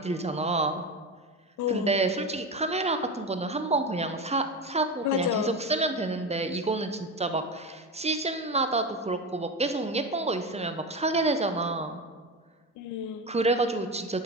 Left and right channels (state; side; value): normal; both; correlation 0.21